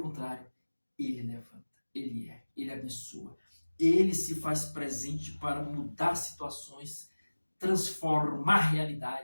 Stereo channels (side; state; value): both; inverted; correlation -1.00